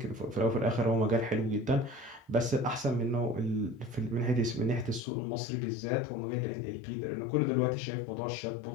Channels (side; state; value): right; drops out; at 5.0 s